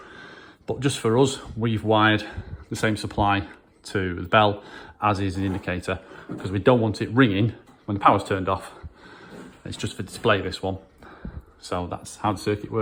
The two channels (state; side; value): identical; both; correlation 1.00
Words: But just for us, we've wired the same supply to the bell as is the indicator, because we don't want it ringing when the power's turned off. It's just for display, this one. So that's how the circuit